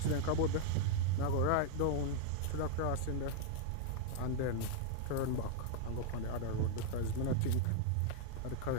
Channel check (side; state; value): both; different; correlation 0.00